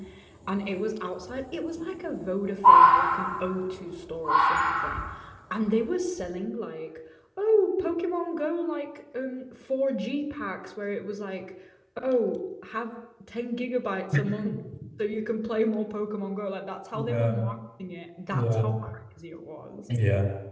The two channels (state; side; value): identical; both; correlation 1.00